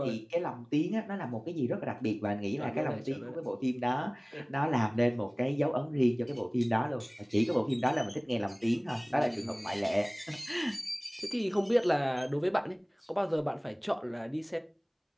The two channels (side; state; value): both; identical; correlation 1.00